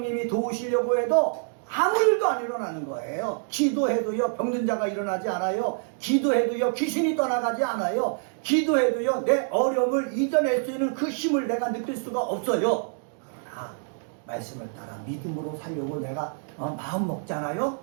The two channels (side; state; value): left; silent; digital silence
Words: 도우시려고 해도 아무 일도 안 일어나는 거예요. 기도해도요, 병든 자가 일어나지 않아요. 기도해도요, 귀신이 떠나가지 않아요. 기도해도요, 내 어려움을 이겨낼 수 있는 그 힘을 내가 느낄 수가 없어요. 그러나 말씀을 따라 믿음으로 살려고 내가 마음 먹잖아요.